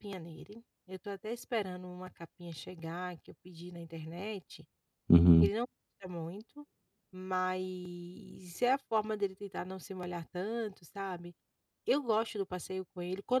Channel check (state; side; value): identical; both; correlation 1.00